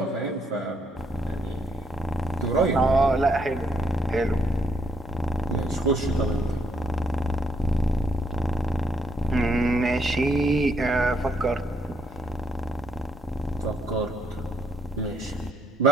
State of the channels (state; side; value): normal; both; correlation 0.74